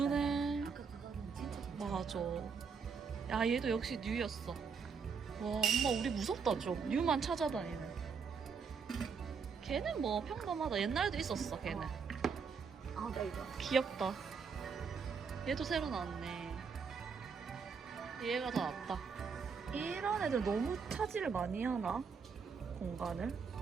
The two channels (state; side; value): quieter; left; 5.7 dB